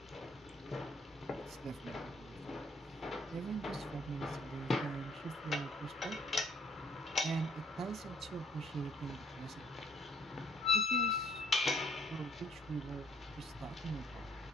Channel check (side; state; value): both; normal; correlation 0.63